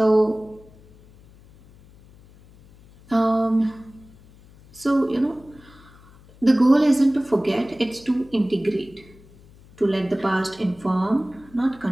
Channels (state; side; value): noise; left; hum, 25 dB below the sound